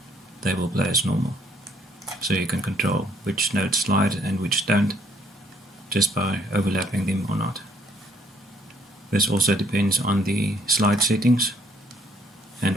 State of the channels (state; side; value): normal; both; correlation 0.66